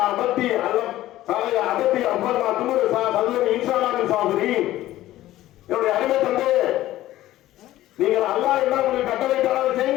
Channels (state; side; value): quieter; right; 15.0 dB